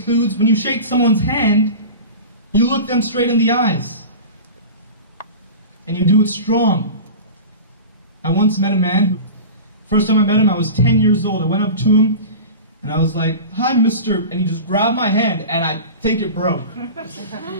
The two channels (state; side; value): inverted; both; correlation -0.33